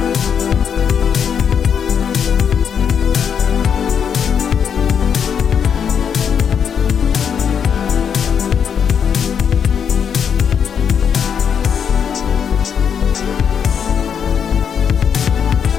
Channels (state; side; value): quieter; right; 7.5 dB